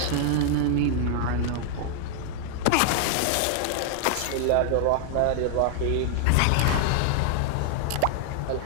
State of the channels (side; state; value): both; different; correlation 0.00